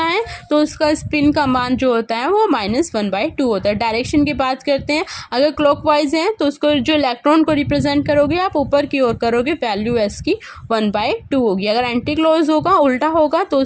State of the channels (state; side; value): identical; both; correlation 1.00